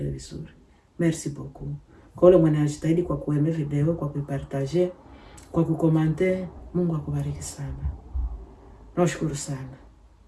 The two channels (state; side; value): identical; both; correlation 1.00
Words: vizuri. Merci beaucoup. Kwa wale mwanajitahidi kwa kueme video, kwa kuipartager, kwa kukomante, Mungu akubariki sana. Nashukuru sana.